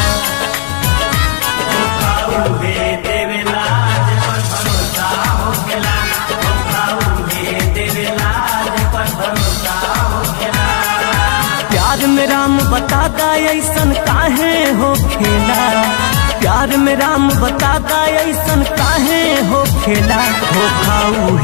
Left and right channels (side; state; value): right; silent; digital silence